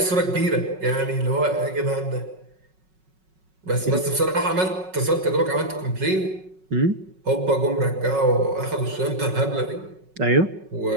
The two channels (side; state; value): left; late; 5.4 ms